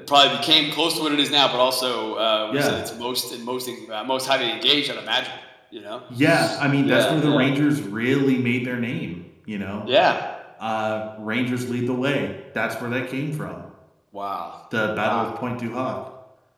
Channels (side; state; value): both; identical; correlation 1.00